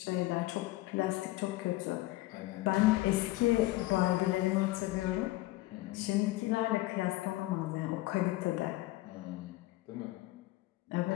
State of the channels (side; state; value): right; quieter; 18.4 dB